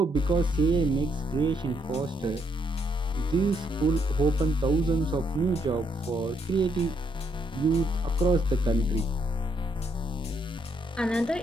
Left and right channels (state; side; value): normal; both; correlation 0.74